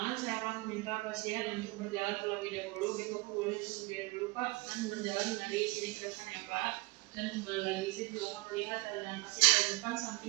saya akan meminta pasien untuk berjalan terlebih dahulu. Baik, Bapak boleh berdiri dulu Pak, dan berjalan dari sini ke depan ya Pak. Dan kembali lagi, saya juga akan melihat dengan pasien dari depan,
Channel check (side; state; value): left; quieter; 24.8 dB